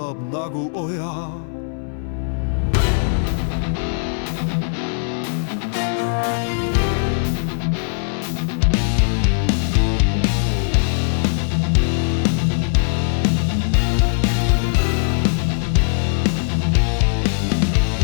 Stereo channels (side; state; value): right; silent; 66 dB below the other